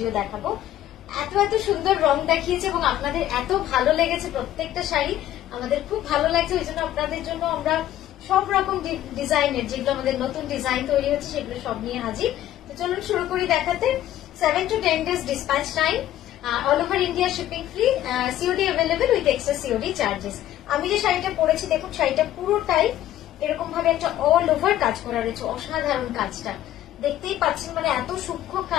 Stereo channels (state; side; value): quieter; right; 12.8 dB